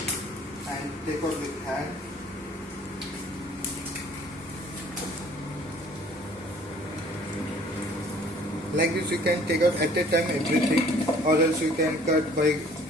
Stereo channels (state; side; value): normal; both; correlation 0.54